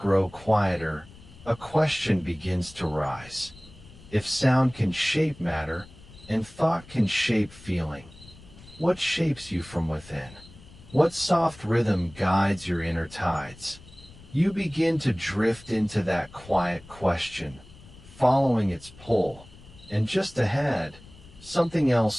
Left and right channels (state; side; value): noise; left; rumble, 21 dB below the sound